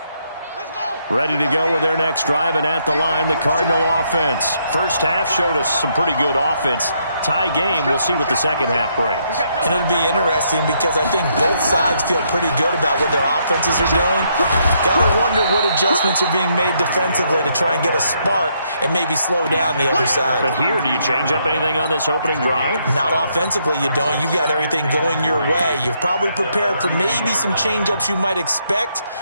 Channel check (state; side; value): inverted; both; correlation -0.74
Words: Ready to go with their next drive, and at the line, the Cardinal offense. First half showed us some pretty good offense. Tie game, we'll see what the second half brings. And it'll be interesting because I think both sides feel pretty good about what their offenses are doing. Got to wonder what adjustments are being made defensively to try and get a spark and maybe slow down the other side. But here, do you change up anything on this opening drive? Not offensively, you don't. You've got everything going your way. You've probably prepared for maybe some change-ups you might expect,